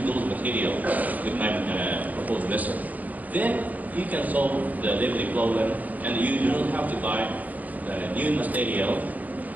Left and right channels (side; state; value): left; late; 0.079 ms